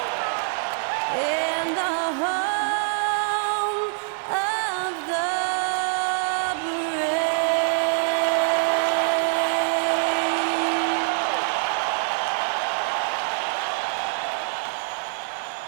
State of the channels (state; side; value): silent; left; 62 dB below the other